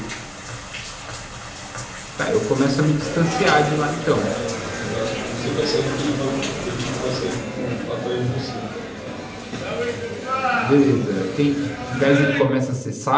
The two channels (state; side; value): identical; both; correlation 1.00